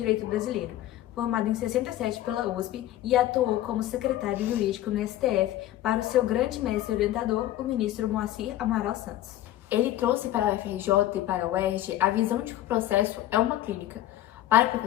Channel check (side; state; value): right; quieter; 13.8 dB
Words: brasileiro, formado em 67 pela USP e atuou como secretário jurídico no STF para o seu grande mestre orientador, o ministro Moacir Amaral Santos. Ele trouxe para a UFRJ e para a UERJ a visão de que o processo é uma clínica. Para o